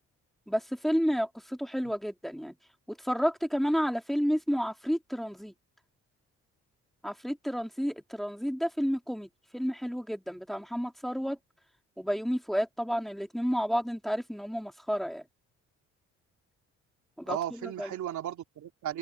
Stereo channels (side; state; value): both; normal; correlation 0.94